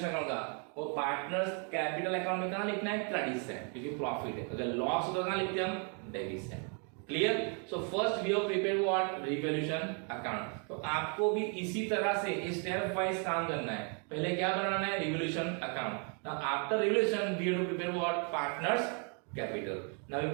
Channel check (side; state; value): left; quieter; 39.3 dB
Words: अकाउंट का, वो पार्टनर्स कैपिटल अकाउंट में कहां लिखना है क्रेडिट साइड, क्योंकि प्रॉफिट है। अगर लॉस होता है कहां लिखते हैं हम debit side. Clear? So first we have prepared what revaluation account. तो आपको भी इसी तरह से स्टेप वाइज काम करना है। पहले क्या बनाना है revaluation account. Now after revaluation we have to prepare what partners capital. Now we